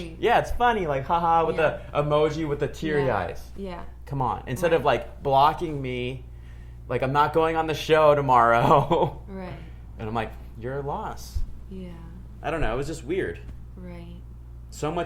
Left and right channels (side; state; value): both; identical; correlation 1.00